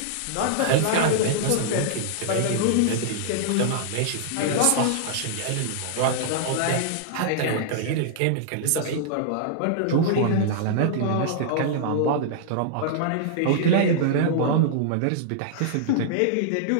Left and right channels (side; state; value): both; different; correlation -0.01